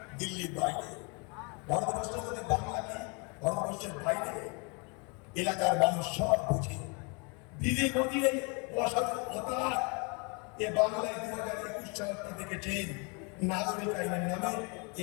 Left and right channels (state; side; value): quieter; right; 33.0 dB